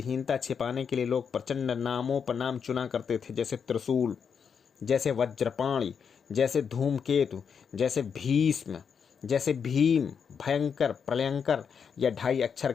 छिपाने के लिए लोग प्रचंड नामों पर नाम चुना करते थे, जैसे त्रिशूल, जैसे वज्रपाणी, जैसे धूमकेतु, जैसे भीष्म, जैसे भीम, भयंकर, प्रलयंकर या 2.5 अक्षर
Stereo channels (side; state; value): right; quieter; 6.7 dB